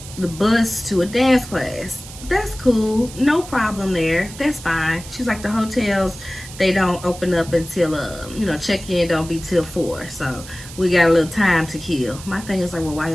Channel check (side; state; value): right; noise; hiss, 15 dB below the sound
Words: the bus to a dance class. That's cool, no problem there, that's fine. She's like, the hotels, they don't open up until you know, check-in don't be till 4, so we got a little time to kill. My thing is like, well, why